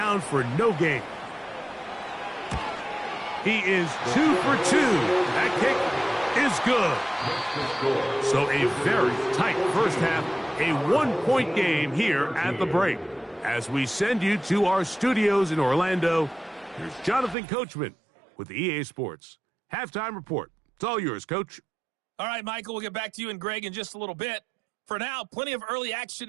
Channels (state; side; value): drops out; left; at 17.4 s